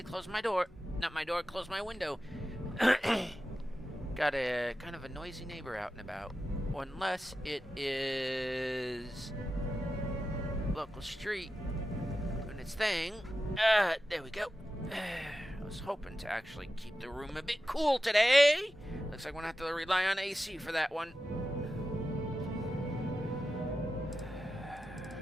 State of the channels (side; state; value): both; normal; correlation 0.92